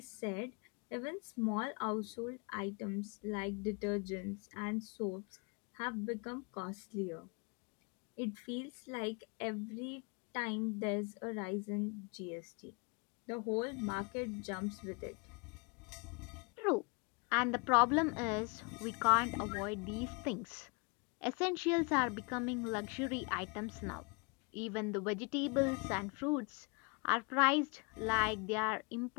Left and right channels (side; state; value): right; quieter; 31.8 dB